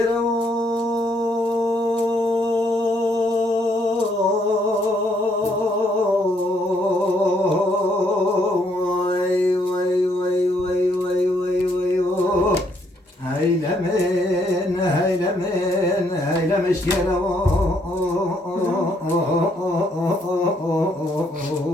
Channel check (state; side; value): normal; both; correlation 0.70